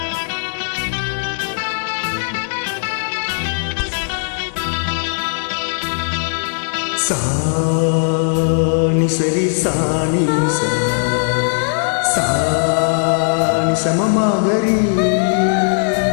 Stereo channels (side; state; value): right; silent; digital silence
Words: சாணி சரி சாணி சாணி சமமாகரி